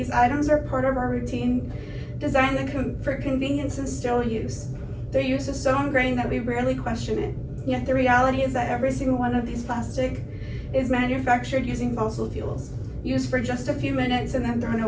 items are part of our routine, designed for convenience and sterile use. Their use is so ingrained that we rarely question it. Yet the reality is that every single one of these plastic is manufactured using fossil fuels, used for just a few minutes and then thrown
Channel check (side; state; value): both; identical; correlation 1.00